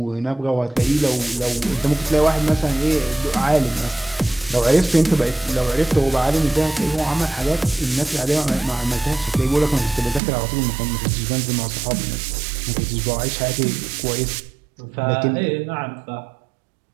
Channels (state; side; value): drops out; left; at 10.2 s